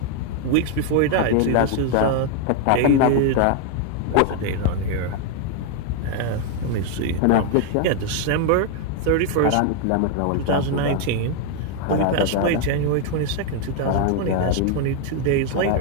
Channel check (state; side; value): different; both; correlation 0.01